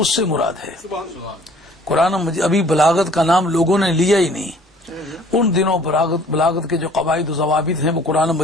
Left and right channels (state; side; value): normal; both; correlation 0.54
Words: سے مراد ہے۔ قرآن مجید ابھی بلاغت کا نام لوگوں نے لیا ہی نہیں، ان دنوں بلاغت کے جو قواعد و ضوابط ہیں وہ قرآن